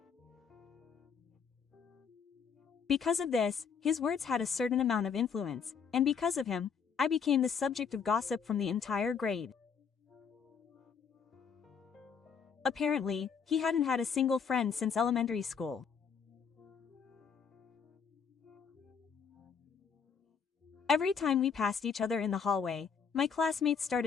Because of this, his words had a certain amount of influence, and because of him, I became the subject of gossip from the entire grade. Apparently, he hadn't had a single friend since elementary school. Every time we passed each other in the hallway, my classmates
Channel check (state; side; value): quieter; right; 6.4 dB